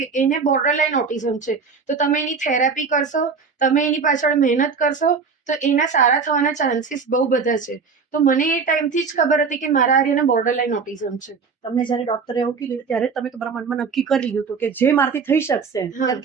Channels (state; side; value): quieter; left; 5.3 dB